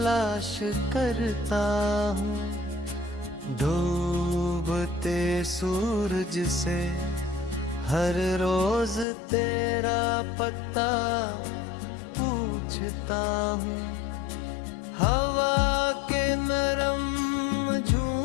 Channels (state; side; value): drops out; right; at 9.1 s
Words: करता हूँ। डूबते सूरज से हर रोज तेरा पता पूछता हूँ। हवा के नरम